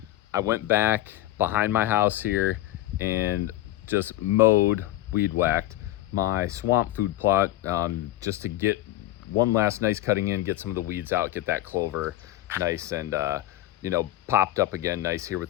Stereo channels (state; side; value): quieter; right; 15.3 dB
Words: I went back behind my house here and just mowed, weed whacked my swamp food plot, just to get one last nice cutting in, get some of the weeds out, get that clover nice and popped up again nice here